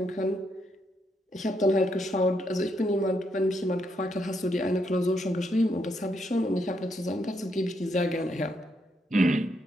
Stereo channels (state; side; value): normal; both; correlation 0.77